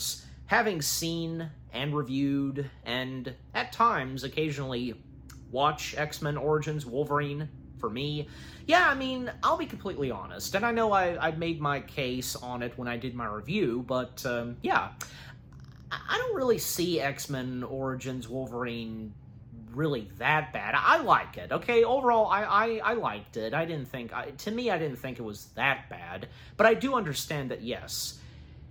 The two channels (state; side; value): identical; both; correlation 1.00